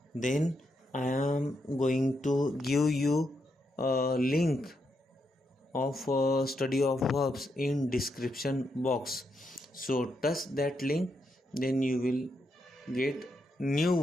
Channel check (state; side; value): normal; both; correlation 0.81